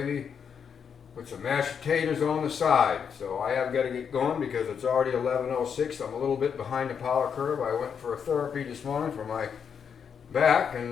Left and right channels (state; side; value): quieter; right; 7.1 dB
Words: with some mashed potatoes on the side. So I have got to get going because it's already 11:06. I'm a little bit behind the power curve. I went for a therapy this morning for my back,